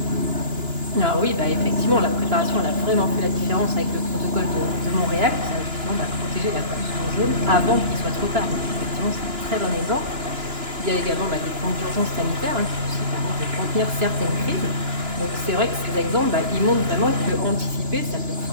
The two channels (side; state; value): left; late; 2.9 ms